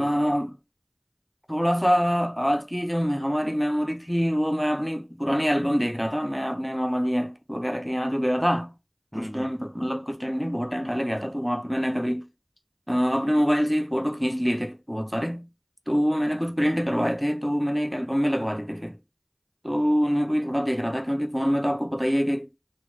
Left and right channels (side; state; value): both; identical; correlation 1.00